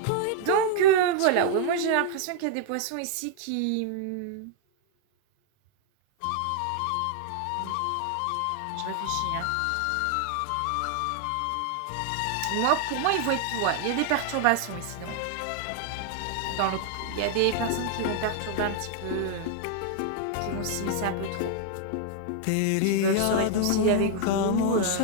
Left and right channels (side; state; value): both; different; correlation 0.00